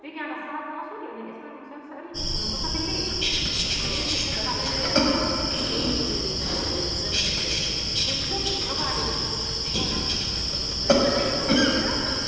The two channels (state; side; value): identical; both; correlation 1.00